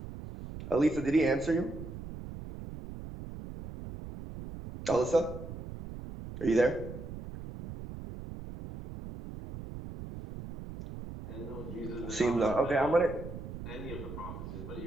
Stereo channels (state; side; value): noise; right; rumble, 10 dB below the sound